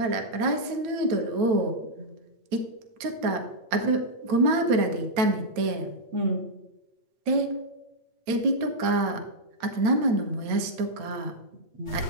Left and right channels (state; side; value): late; left; 9.1 ms